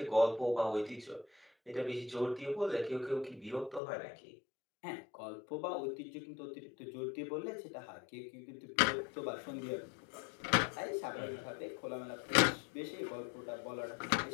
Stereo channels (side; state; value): right; drops out; at 3.8 s